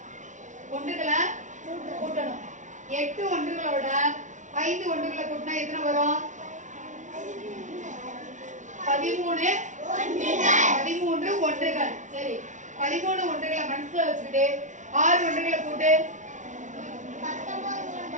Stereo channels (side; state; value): left; late; 0.36 ms